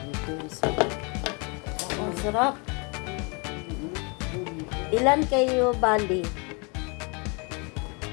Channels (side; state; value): right; quieter; 32.2 dB